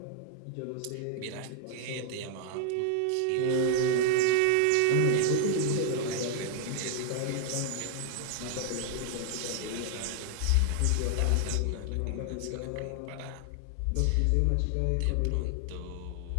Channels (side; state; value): both; different; correlation 0.00